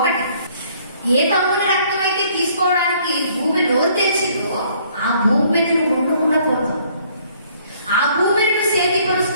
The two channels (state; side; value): inverted; both; correlation -0.62